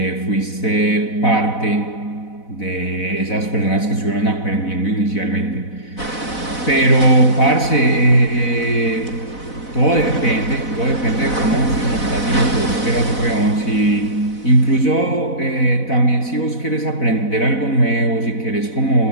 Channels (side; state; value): right; late; 4.0 ms